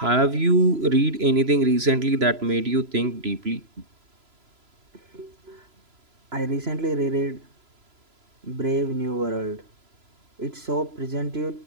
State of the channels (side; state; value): left; late; 3.0 ms